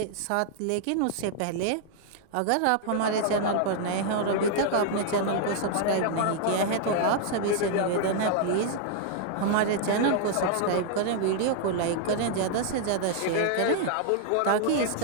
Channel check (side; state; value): both; different; correlation -0.01